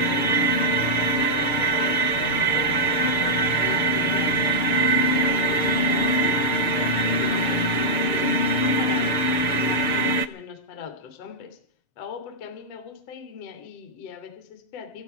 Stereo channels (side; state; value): right; late; 7.3 ms